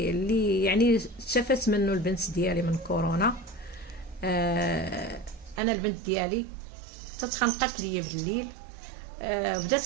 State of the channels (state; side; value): drops out; left; at 5.6 s